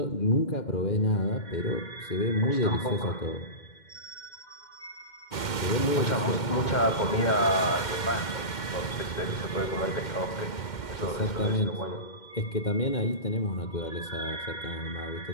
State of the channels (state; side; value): late; right; 2.1 ms